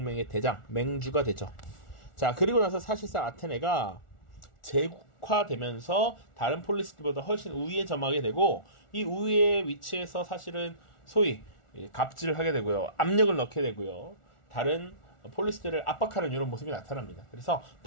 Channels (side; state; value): right; late; 1.4 ms